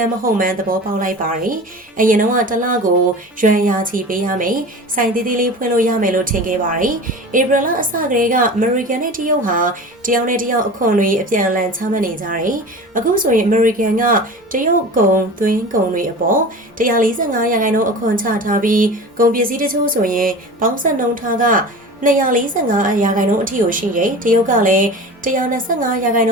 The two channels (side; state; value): both; normal; correlation 0.35